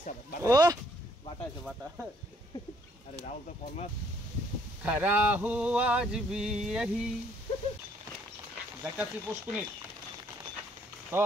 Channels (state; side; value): normal; both; correlation 0.65